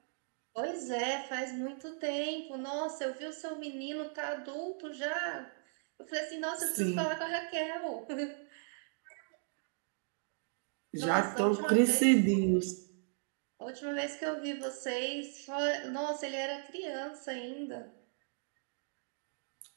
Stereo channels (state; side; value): silent; left; digital silence